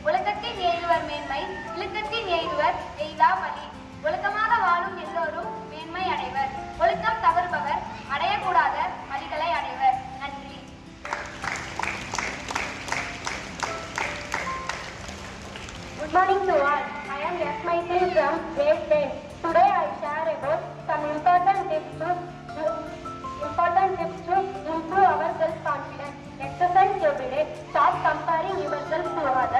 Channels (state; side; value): identical; both; correlation 1.00